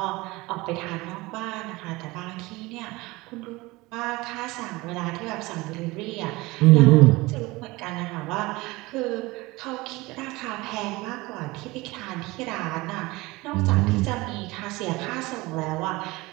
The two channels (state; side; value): quieter; left; 21.7 dB